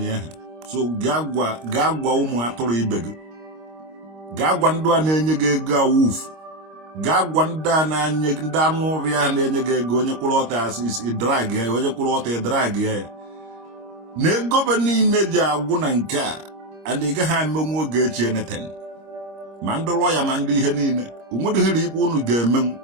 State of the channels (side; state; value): left; late; 26 ms